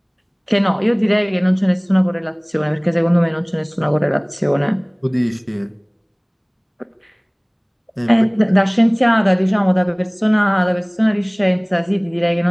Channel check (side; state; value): both; identical; correlation 1.00